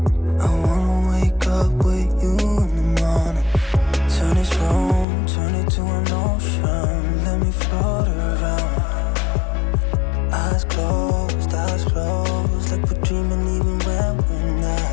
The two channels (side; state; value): right; drops out; at 5.1 s